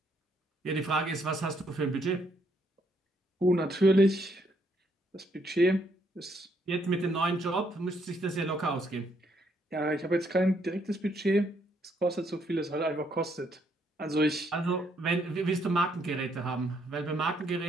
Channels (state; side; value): normal; both; correlation 0.72